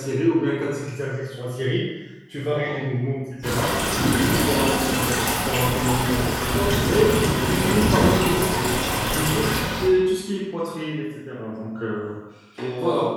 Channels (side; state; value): both; identical; correlation 1.00